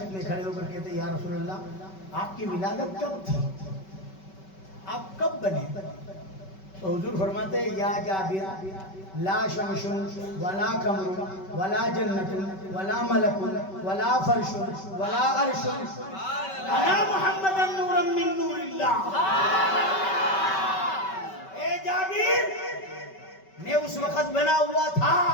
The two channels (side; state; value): right; late; 5.2 ms